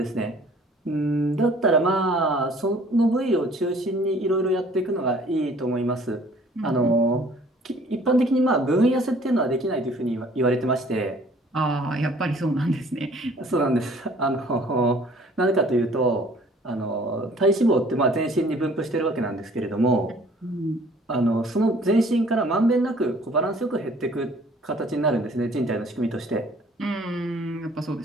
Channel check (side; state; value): both; normal; correlation 0.55